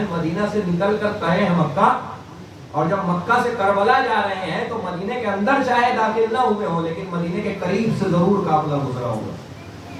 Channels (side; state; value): both; identical; correlation 1.00